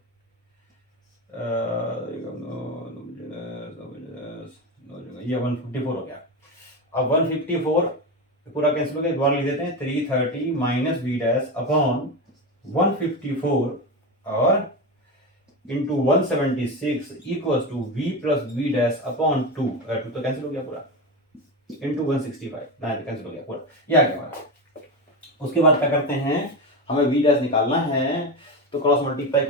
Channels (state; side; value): normal; both; correlation 0.19